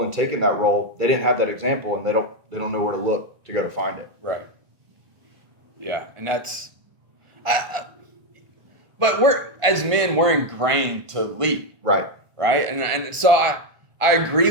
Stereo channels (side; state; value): left; late; 1.4 ms